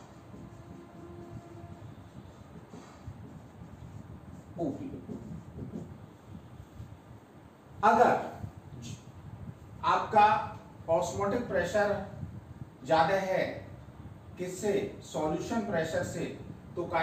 ओपी। अगर आपका ऑस्मोटिक प्रेशर ज्यादा है किससे? सॉल्यूशन प्रेशर से, तो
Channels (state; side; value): identical; both; correlation 1.00